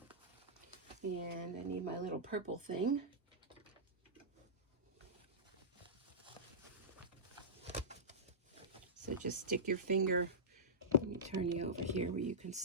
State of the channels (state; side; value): normal; both; correlation -0.16